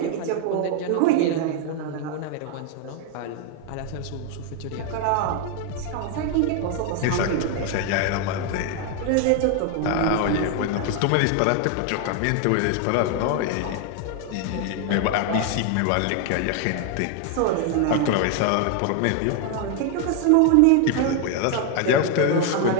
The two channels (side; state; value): both; different; correlation 0.00